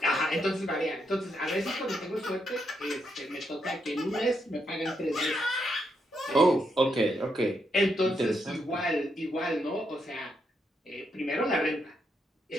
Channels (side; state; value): both; normal; correlation 0.80